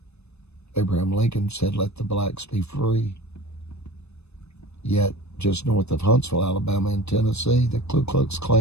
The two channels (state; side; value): late; right; 0.80 ms